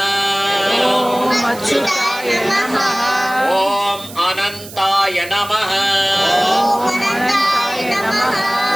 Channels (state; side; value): noise; right; hiss, 16 dB below the sound